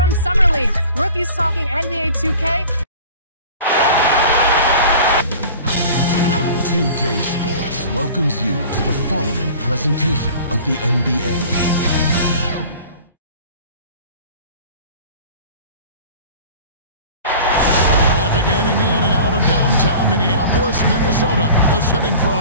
Summer League, rookies talking NBA 2K. 2K Sports welcomes you to the following presentation of the NBA. Getting in and out of downtown Minneapolis, Minnesota, the setting for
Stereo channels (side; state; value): both; inverted; correlation -0.42